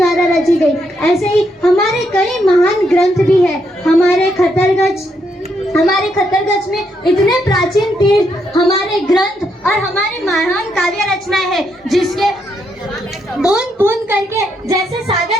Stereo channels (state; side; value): normal; both; correlation 0.77